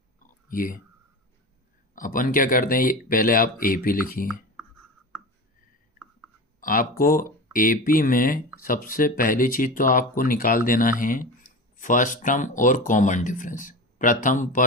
ये अपन क्या करते हैं, ये पहले आप AP लिखिए। आपको AP में सबसे पहली चीज़ तो आपको निकाल देना है फर्स्ट टर्म और कॉमन डिफरेंस, प्रथम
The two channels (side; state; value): both; normal; correlation 0.28